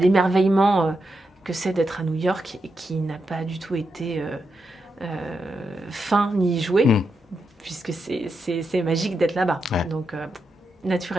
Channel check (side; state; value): both; normal; correlation 0.85